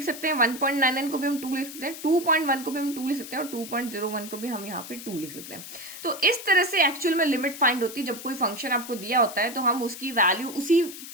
सकते हैं, 1.99 को भी हम 2 लिख सकते हैं, 2.1 को भी हम 2 लिख सकते हैं, और 2.01 को भी हम यहाँ पे 2 लिख सकते हैं। तो इस तरह से एक्चुअल में लिमिट फाइंड होती है। जब कोई फंक्शन आपको दिया होता है तो हम उसकी वैल्यू उसी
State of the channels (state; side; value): noise; left; hiss, 12 dB below the sound